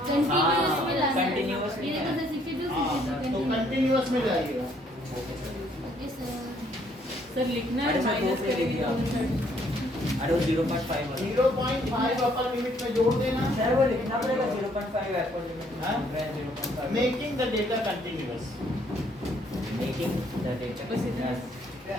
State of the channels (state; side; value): normal; both; correlation 0.66